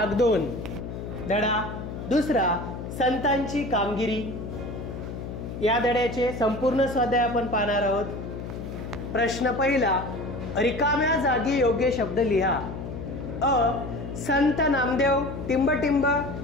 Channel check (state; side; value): noise; left; hum, 8 dB below the sound